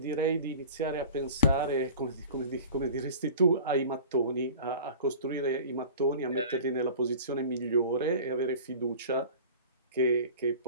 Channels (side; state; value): both; inverted; correlation -0.40